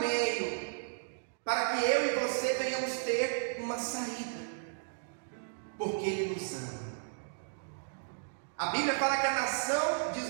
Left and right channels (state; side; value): silent; left; digital silence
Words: para que eu e você venhamos ter uma saída, porque Ele nos ama. A Bíblia fala que a nação de